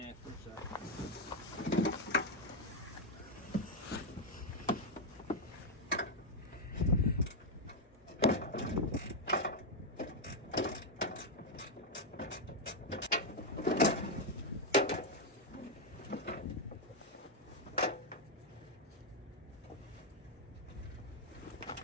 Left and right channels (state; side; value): normal; both; correlation 0.01